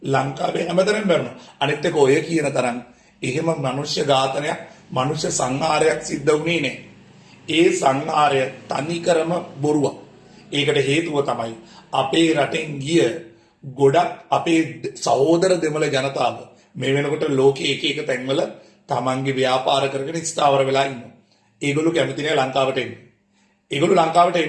ලංකාවේ හැමතැනම මැරුණා. අනිත් එක ඔය කියන තරම් එහෙම මනුෂ්‍ය ඝාතනයක් මනුෂ්‍ය සංහාරයක් සිද්ධ වුණේ නැහැ. ඒ සංහාරය තනිකරම බොරුවක්. ඒකට හේතුව තමයි අපේ රටෙන් ගිය ගොඩක් අපේ සහෝදර දෙමළ ජනතාව මේ වෙනකොට ලෝකයේ එක එක තැන්වල තමන්ගේ ව්‍යාපාර කරගෙන ස්ථාවර වෙලා ඉන්නවා. ඒගොල්ලෝ කැමති නැහැ ලංකාවට එන්න. ඒගොල්ලෝ ලංකාවට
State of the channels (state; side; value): identical; both; correlation 1.00